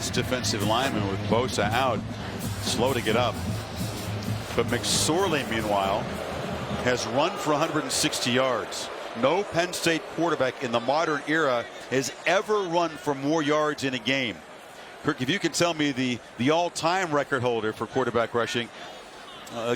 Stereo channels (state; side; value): identical; both; correlation 1.00